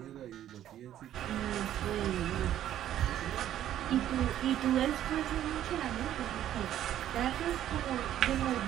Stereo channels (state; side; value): quieter; left; 11.8 dB